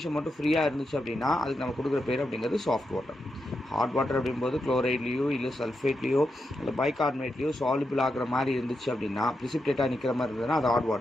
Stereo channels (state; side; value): normal; both; correlation 0.86